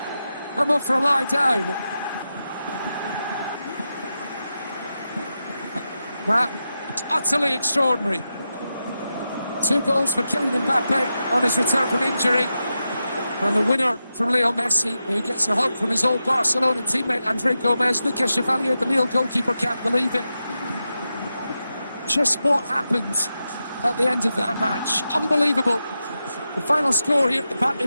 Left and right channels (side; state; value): both; inverted; correlation -0.89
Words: I'm up for a lie down. That utterly extraordinary. 2 goals for Kylian Mbappe on his return from injury. And the winner from Leo Messi, who gets a hug from his old Barcelona teammate Andre Gomez. Lucas Chevalier, the Lille goalkeeper, can't believe it. Just what happened at the end of that match. Unbelievable. The final score here at the Parc